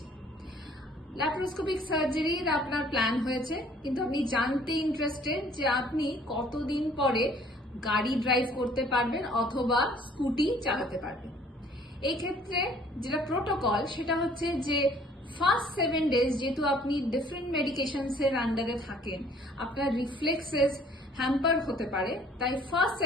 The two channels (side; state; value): both; normal; correlation 0.57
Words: ল্যাপারোস্কোপিক সার্জারির আপনার প্ল্যান হয়েছে, কিন্তু আপনি জানতে ইন্টারেস্টেড যে আপনি কতদিন পরে গাড়ি ড্রাইভ করতে পারবেন অথবা স্কুটি চালাতে পারবেন। এই ক্ষেত্রে যেটা প্রোটোকল সেটা হচ্ছে যে ফার্স্ট 7 days যেহেতু আপনি ডিফারেন্ট মেডিকেশনস এর আন্ডারে থাকেন, আপনার রিফ্লেক্সেস হ্যাম্পার হতে পারে, তাই ফার্স্ট